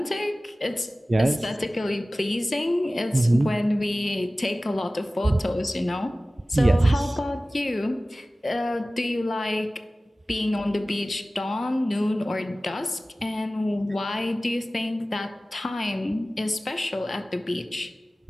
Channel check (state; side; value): normal; both; correlation 0.97